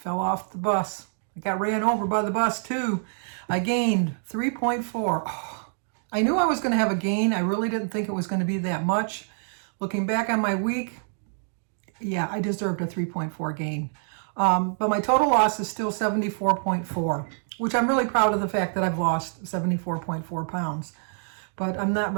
off the bus. I got ran over by the bus too. I gained 3.4. Oh, I knew I was going to have a gain. I really didn't think it was going to be that much. Looking back on my week, yeah, I deserved a 3.4 gain. But my total loss is still 74.4, which I'm really proud of the fact that I've lost 74.4 pounds. But I'm not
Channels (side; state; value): left; silent; 61 dB below the other